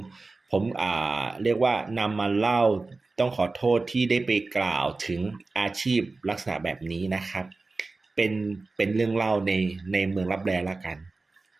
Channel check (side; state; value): left; quieter; 3.6 dB